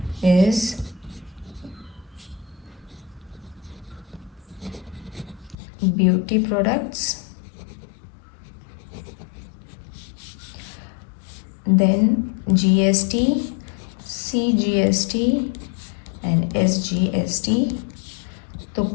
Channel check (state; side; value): drops out; right; at 5.6 s